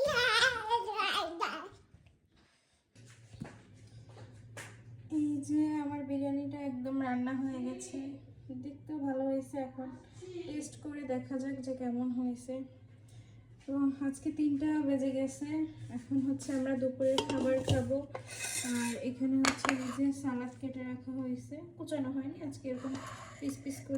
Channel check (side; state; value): both; identical; correlation 1.00